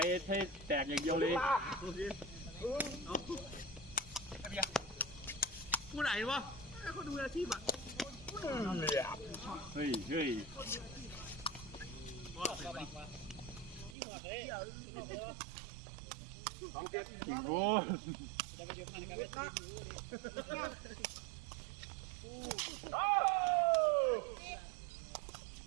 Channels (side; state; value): left; drops out; at 14.0 s